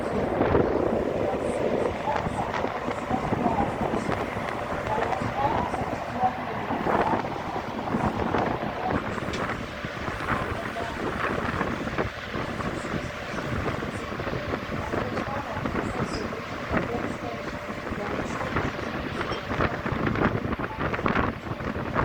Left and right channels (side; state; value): both; identical; correlation 1.00